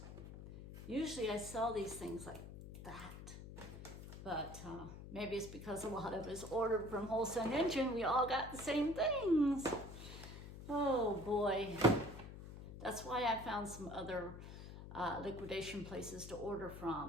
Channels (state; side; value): noise; left; hum, 12 dB below the sound